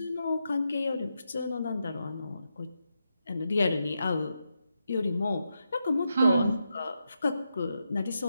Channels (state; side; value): inverted; both; correlation -0.85